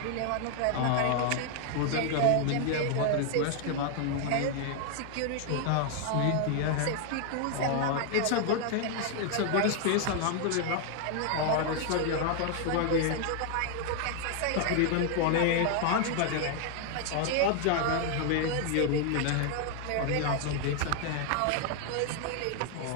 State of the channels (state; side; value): different; both; correlation 0.00